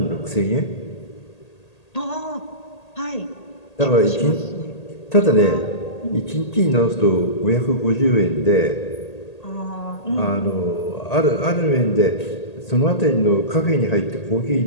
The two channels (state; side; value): late; right; 1.8 ms